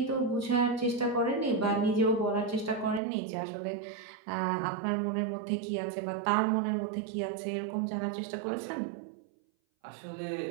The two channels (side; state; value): left; drops out; at 3.0 s